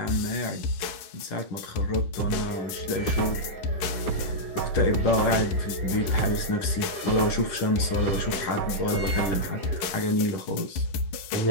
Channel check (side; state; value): right; late; 10 ms